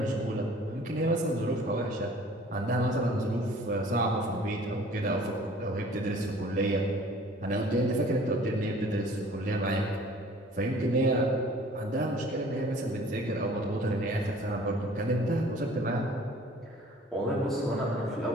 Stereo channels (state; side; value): normal; both; correlation 0.51